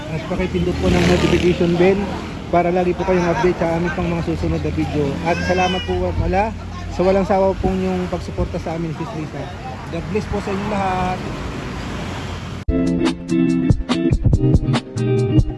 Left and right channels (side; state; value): both; identical; correlation 1.00